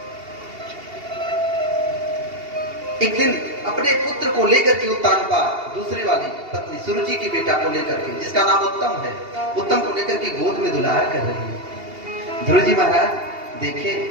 एक दिन अपने पुत्र को लेकर के उत्तानपा दूसरी वाली पत्नी सुरुचि की बेटा को लेकर के, जिसका नाम उत्तम है, उत्तम को लेकर के गोद में दुलार कर रही है। ध्रुव जी महाराज देखे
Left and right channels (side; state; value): left; late; 2.8 ms